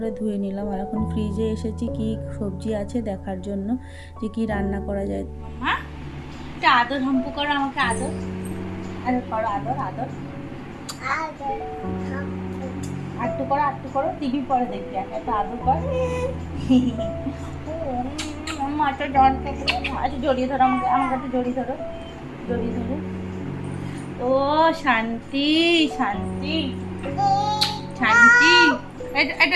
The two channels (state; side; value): identical; both; correlation 1.00